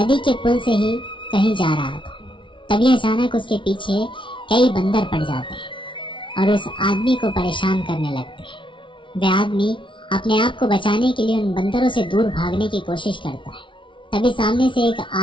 के पुल से ही कहीं जा रहा था, तभी अचानक उसके पीछे कई बंदर पड़ जाते हैं और उस आदमी को परेशान करने लगते हैं। वह आदमी अपने आप को बचाने के लिए उन बंदरों से दूर भागने की कोशिश करता है। तभी सामने से एक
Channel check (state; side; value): late; right; 0.24 ms